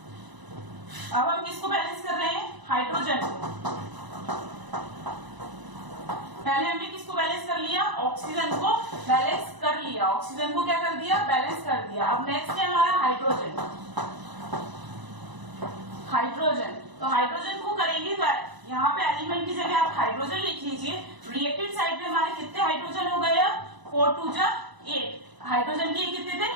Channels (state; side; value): late; left; 1.0 ms